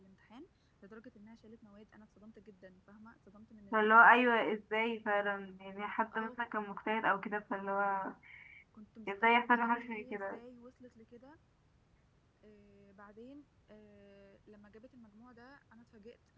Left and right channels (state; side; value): identical; both; correlation 1.00